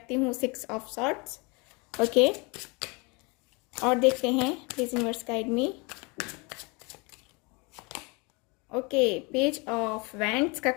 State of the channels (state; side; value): quieter; right; 28.9 dB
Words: हूँ 6 ऑफ सॉर्ट्स। ओके, और देखते हैं, please universe guide me. Okay, page of wands का